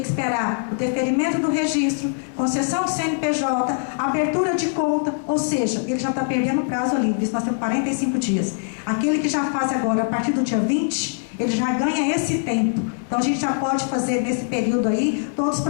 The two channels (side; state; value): right; silent; 64 dB below the other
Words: esperar o deferimento do registro, concessão do CNPJ, abertura de conta, ou seja, ele já está perdendo o prazo ali, nós temos 45 dias. Aquele que já faz agora, a partir do dia 20, ele já ganha esse tempo. Então a gente já pode fazer nesse período aí todos os